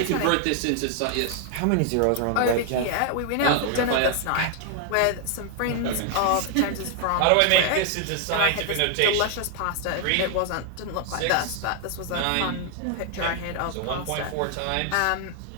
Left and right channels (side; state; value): both; different; correlation 0.00